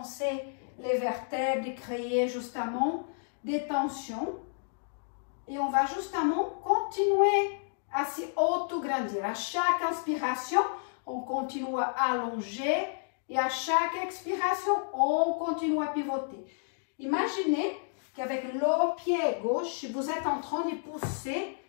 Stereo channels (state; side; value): silent; right; digital silence